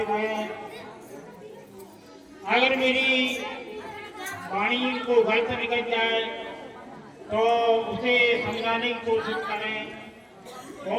हुए हैं, अगर मेरी वाणी को गलत निकल जाए तो उसे समझाने की कोशिश करें।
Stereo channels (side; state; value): both; identical; correlation 1.00